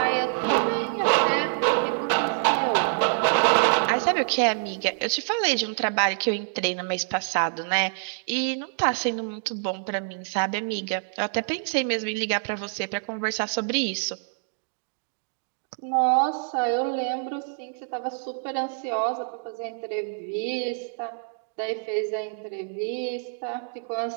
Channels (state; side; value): silent; left; digital silence